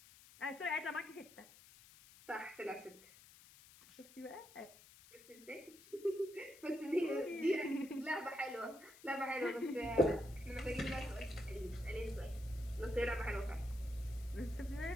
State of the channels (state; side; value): noise; left; hiss, 21 dB below the sound